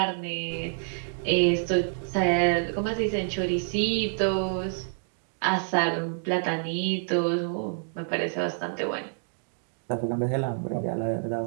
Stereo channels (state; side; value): silent; left; digital silence